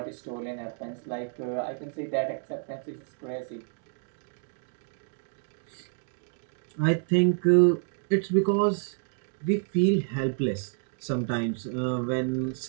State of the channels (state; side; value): silent; left; 58 dB below the other